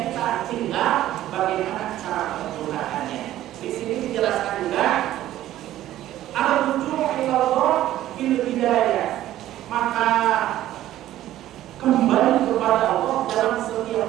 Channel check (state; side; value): quieter; left; 13.6 dB